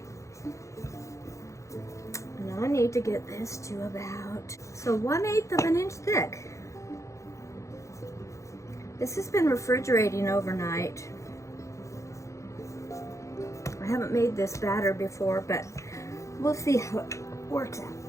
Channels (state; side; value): late; right; 0.15 ms